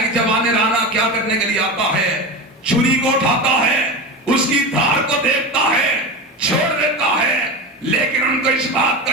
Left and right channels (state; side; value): normal; both; correlation 0.23